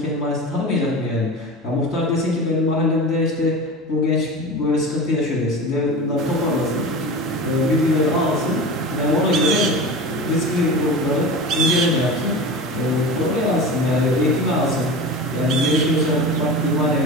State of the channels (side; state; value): both; normal; correlation 0.30